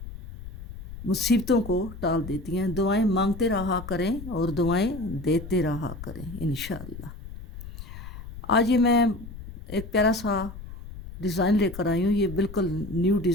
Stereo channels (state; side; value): noise; left; rumble, 12 dB below the sound